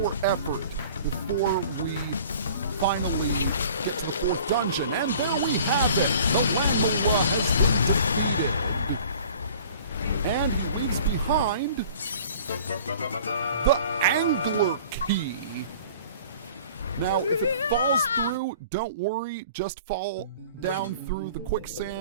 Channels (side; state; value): both; inverted; correlation -0.47